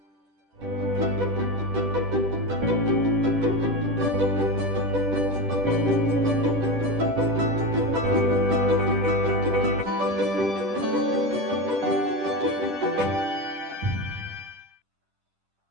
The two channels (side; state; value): left; late; 10 ms